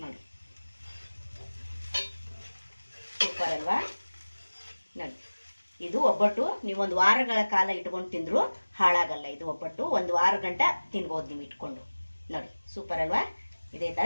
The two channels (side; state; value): both; inverted; correlation -1.00